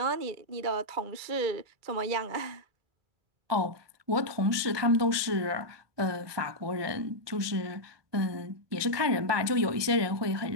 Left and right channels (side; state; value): left; late; 1.2 ms